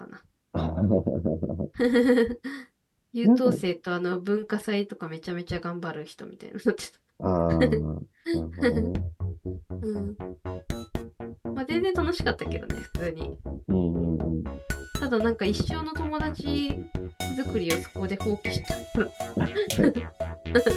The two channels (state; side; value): identical; both; correlation 1.00